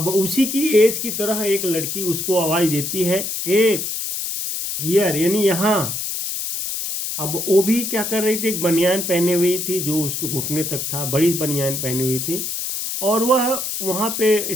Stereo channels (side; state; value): left; noise; hiss, 3 dB below the sound